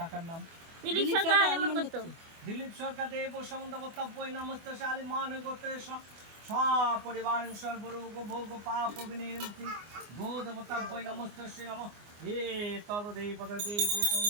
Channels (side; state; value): left; late; 24 ms